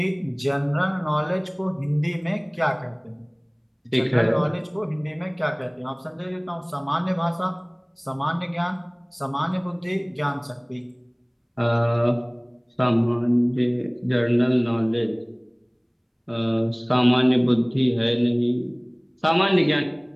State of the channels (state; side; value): identical; both; correlation 1.00